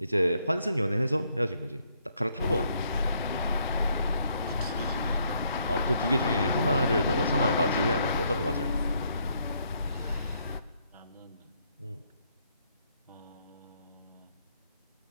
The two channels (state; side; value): inverted; both; correlation -0.71